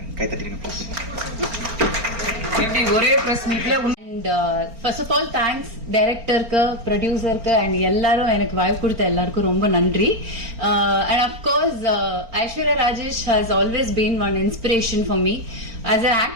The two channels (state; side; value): late; left; 4.4 ms